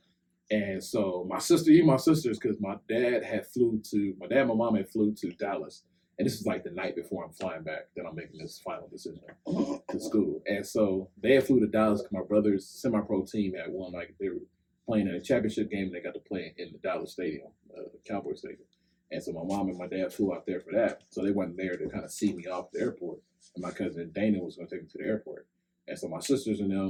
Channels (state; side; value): identical; both; correlation 1.00